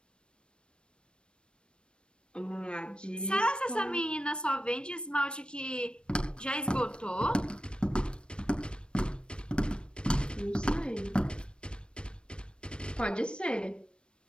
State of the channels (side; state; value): right; late; 0.055 ms